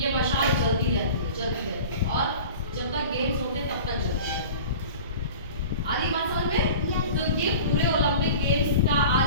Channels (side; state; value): both; inverted; correlation -0.39